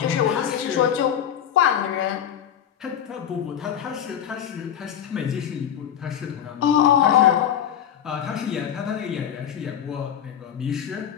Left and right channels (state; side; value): quieter; right; 9.5 dB